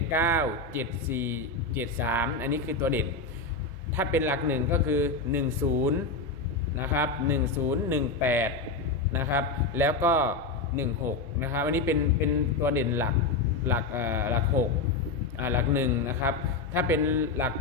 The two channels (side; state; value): right; quieter; 3.8 dB